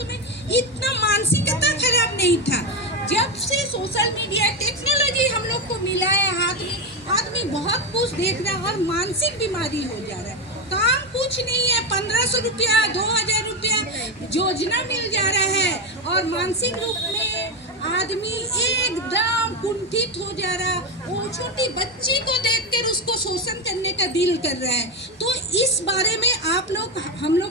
इतना मानसिकता खराब नहीं था। जब से सोशल मीडिया टेक्नोलॉजी हम लोग को मिला है हाथ में, आदमी बहुत कुछ देख रहा है और मानसिक बीमारी हो जा रहा है। काम कुछ नहीं है, 1500 रुपया 2000 रुपया योजना मिल जा रहा है और मानसिक रूप में आदमी एकदम कुंठित हो जा रहा। वो छोटी बच्ची को देखकर उसको शोषण करने का दिल कर रहा है। तो इस बारे में आप लोग, हम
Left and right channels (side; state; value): both; normal; correlation 0.12